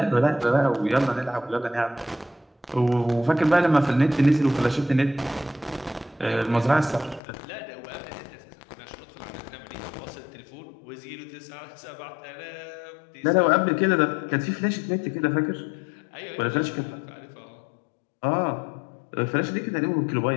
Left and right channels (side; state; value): right; drops out; at 7.2 s